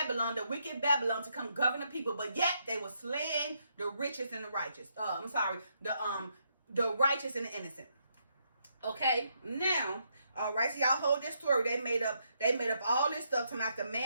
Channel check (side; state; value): both; inverted; correlation -0.77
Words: the wicked Babylon, to come govern the people, but yet they were slaying the richest and the righteous. The righteous and the innocent. Okay, now, all right, so y'all hold this story. They made up all this stuff to make the